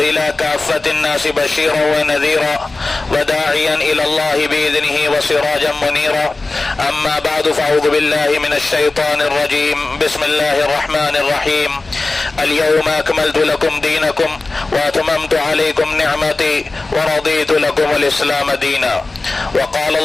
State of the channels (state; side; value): quieter; right; 3.3 dB